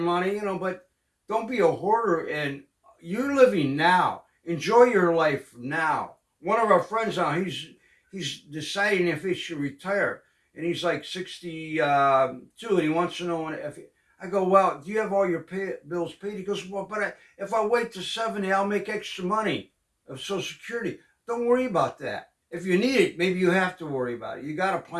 but don't be a hoarder. And you're living now. Enjoy your life now. One of our friends now, he's deciding if he should retire, and he's like 62, and he wants to know if. I go, well, do you have all your bills paid? He goes, well, but if I wait to 70, I'll make extra money of Social Security. Don't worry about that. If you need it, maybe you have to worry about it. You got to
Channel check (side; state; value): both; identical; correlation 1.00